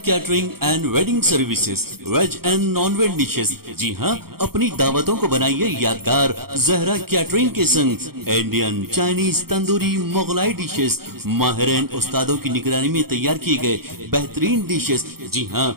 catering and wedding services, veg and non veg dishes. जी हाँ, अपनी दावतों को बनाइए यादगार जहरा कैटरिंग के संग। Indian, Chinese, tandoori, Mughlai dishes माहिरीन उस्तादों की निगरानी में तैयार किए गए बेहतरीन डिशेस। जी हाँ,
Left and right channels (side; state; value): left; late; 0.94 ms